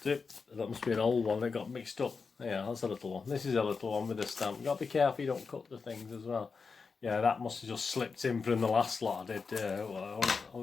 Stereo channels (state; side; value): quieter; right; 5.0 dB